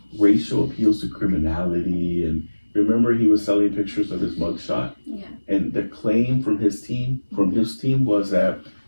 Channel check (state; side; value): inverted; both; correlation -1.00